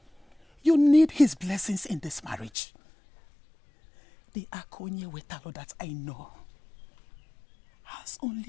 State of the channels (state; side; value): drops out; right; at 2.5 s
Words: You need his blessings in this marriage. The Akonye Wetalo that I know has